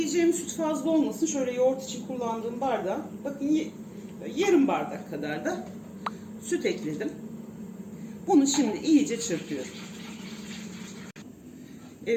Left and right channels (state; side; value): identical; both; correlation 1.00